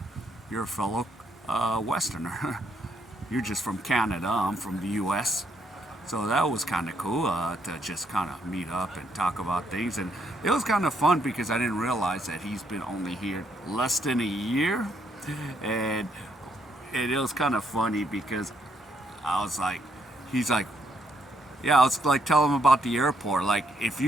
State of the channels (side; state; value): both; normal; correlation 0.73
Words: a fellow Westerner. You're just from Canada. I'm from the U.S. So that was kind of cool to just kind of meet up and talk about things. And it was kind of fun because I didn't realize that he's been only here less than a year. And it was kind of funny because I was like, he's like, yeah, I was like telling him about the airport. Like, if